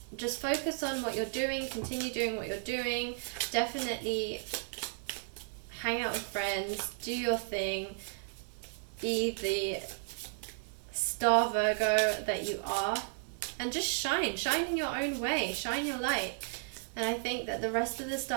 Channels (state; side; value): silent; left; digital silence